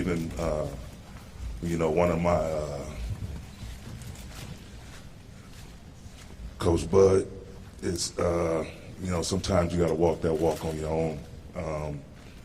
one of my, Coach Bud, it's, sometimes you got to walk that walk on your own.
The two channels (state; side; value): identical; both; correlation 1.00